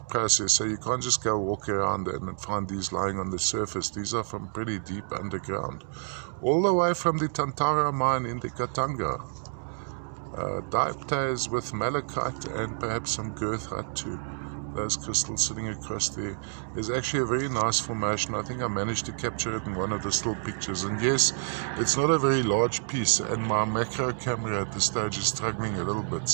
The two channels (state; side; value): silent; left; 59 dB below the other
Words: process, so you can't just go walk around and find these lying on the surface. These are from pretty deep underground, all the way from the Tantara mine in the Katanga. Dioptase with malachite and perhaps some girth height too. Those crystals sitting across there. There's actually a very nice formation. I think I managed to capture it in one of the still pictures. And yes, it's not a very large piece, and my macro camera at this stage is struggling a little